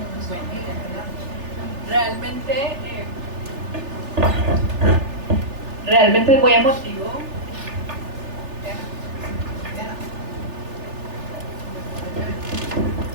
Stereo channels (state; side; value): late; left; 3.4 ms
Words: Realmente es muy emotivo.